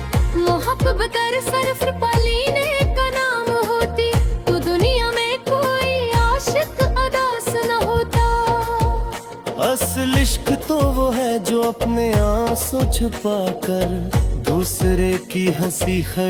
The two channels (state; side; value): identical; both; correlation 1.00